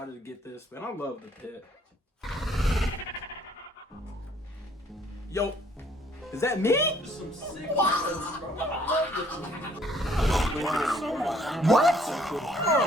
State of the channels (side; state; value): both; normal; correlation 0.62